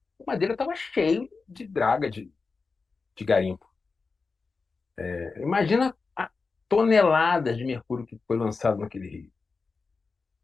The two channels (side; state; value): right; quieter; 4.4 dB